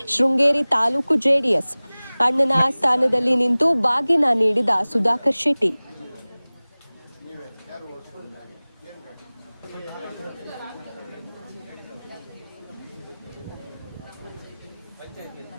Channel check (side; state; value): both; inverted; correlation -0.99